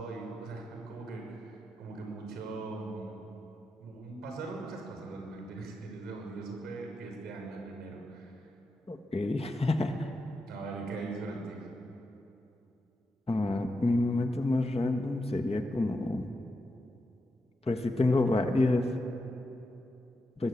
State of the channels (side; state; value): both; normal; correlation 0.87